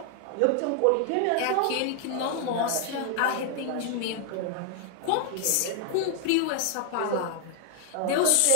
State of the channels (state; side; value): different; both; correlation 0.00